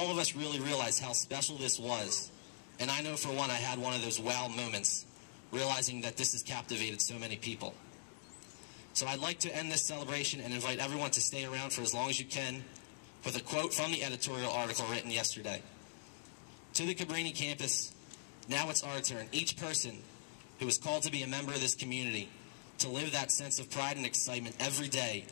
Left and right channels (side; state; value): right; silent; digital silence